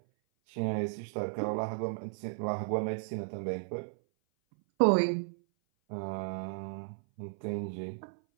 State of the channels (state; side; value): silent; left; 55 dB below the other